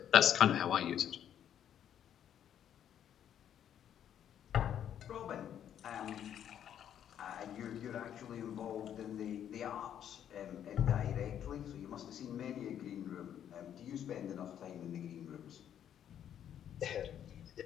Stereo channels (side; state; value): right; quieter; 9.8 dB